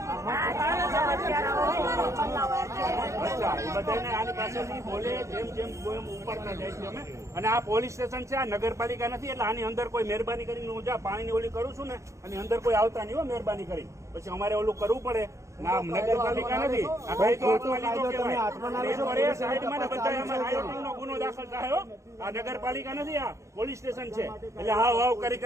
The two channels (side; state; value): left; late; 0.14 ms